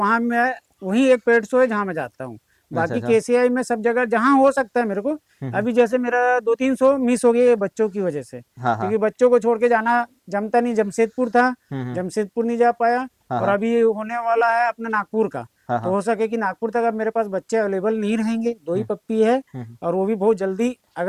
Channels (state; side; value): identical; both; correlation 1.00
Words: मैं, वही एक पेट शो है जहाँ मैं जाता हूँ। अच्छा बाकी अच्छा। केसीआई में सब जगह जहाँ हो सकता है मेरे को। हम्म। अभी जैसे मेरा 2-3 शो मिस हो गए बच्चों की वजह से, हाँ हाँ। क्योंकि बच्चों को छोड़ के जाना जमता नहीं। जमशेदपुर था, हम्म। जमशेदपुर नहीं जा पाया। हाँ और हाँ अभी होने वाला है अपना नागपुर का। हाँ तो हाँ। हो सके कि नागपुर तक अब मेरे पास बच्चे अवेलेबल नहीं रहेंगे, 2 ही हम्म पप्पी है। हम्म और वो भी बहुत जल्दी